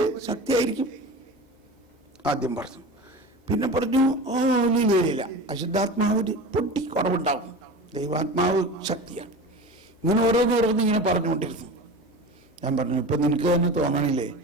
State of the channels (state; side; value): normal; both; correlation 0.32